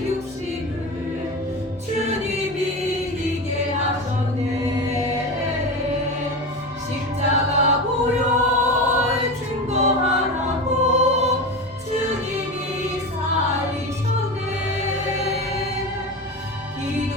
육신을 주님이 이기게 하셨네. 십자가 보혈 증거하라고 주님이 살리셨네.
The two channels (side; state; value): both; normal; correlation 0.24